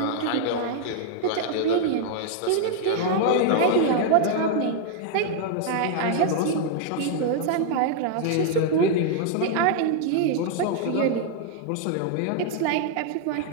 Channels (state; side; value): different; both; correlation 0.00